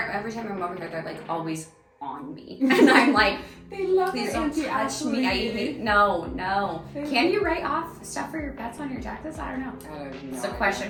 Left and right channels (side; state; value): both; identical; correlation 1.00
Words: every time I'm over here, they're like always on me. And I'm like, they love please don't touch me. I hate, no. Can you write off stuff for your pets on your taxes? I don't know. It's a